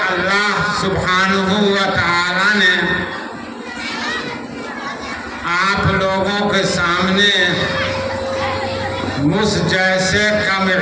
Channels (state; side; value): identical; both; correlation 1.00